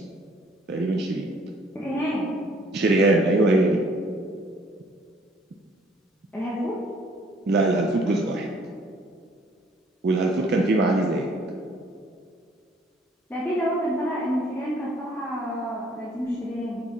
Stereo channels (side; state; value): both; normal; correlation 0.60